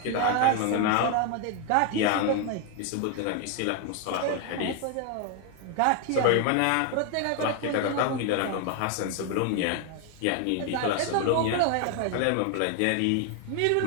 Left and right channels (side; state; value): both; different; correlation 0.01